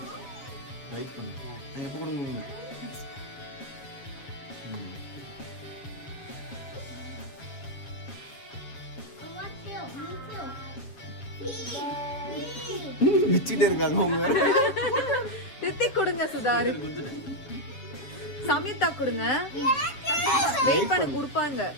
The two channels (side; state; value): right; late; 7.1 ms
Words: வெயிட் பண்ணு. நான் எப்போ கொடுங்க. விச்சிட்டே இருக்காங்க அவங்க. ரித்திக் கொடுங்க சுதார். சமிதா கொடுங்க. வெயிட் பண்ணி கொடுப்பாங்க.